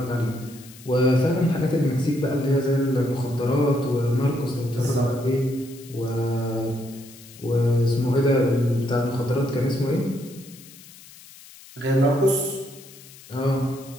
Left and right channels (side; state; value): left; noise; hiss, 20 dB below the sound